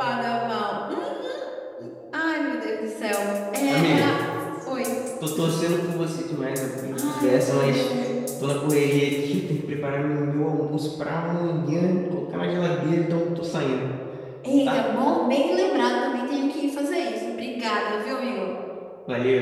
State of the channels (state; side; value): identical; both; correlation 1.00